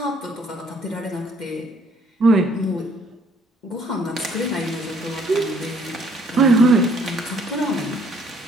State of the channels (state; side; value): normal; both; correlation 0.62